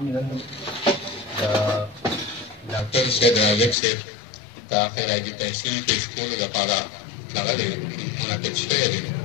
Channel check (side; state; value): right; drops out; at 3.8 s